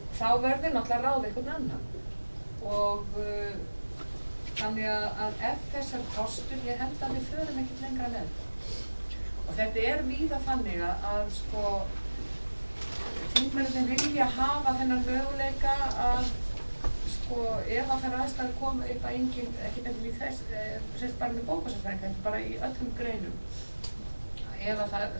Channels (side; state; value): both; inverted; correlation -1.00